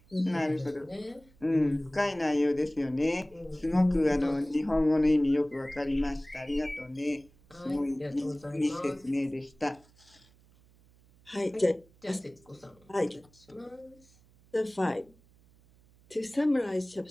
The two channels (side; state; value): right; noise; hum, 29 dB below the sound